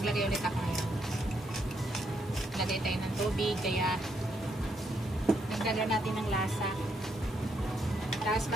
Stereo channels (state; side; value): normal; both; correlation 0.76